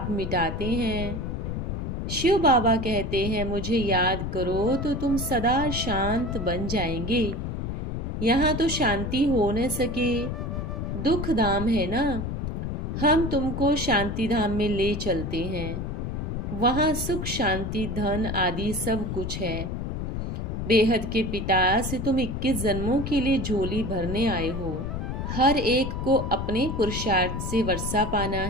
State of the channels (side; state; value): left; noise; rumble, 3 dB below the sound